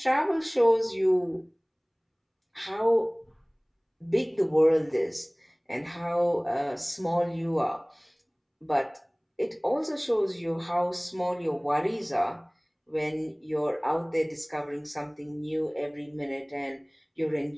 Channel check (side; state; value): both; identical; correlation 1.00